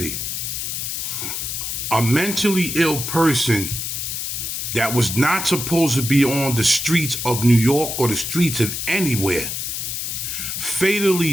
A mentally ill person that was not supposed to be on the streets of New York or the streets of anywhere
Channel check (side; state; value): left; noise; hiss, 4 dB below the sound